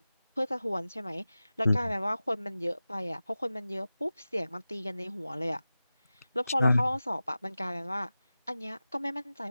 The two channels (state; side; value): inverted; both; correlation -0.95